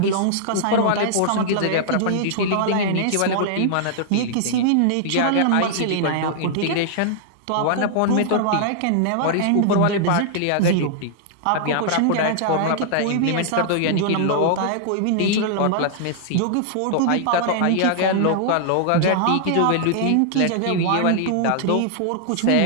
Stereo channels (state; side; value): different; both; correlation -0.01